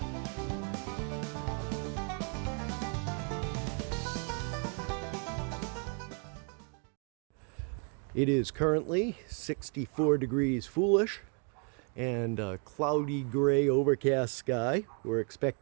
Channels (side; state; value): left; quieter; 38.7 dB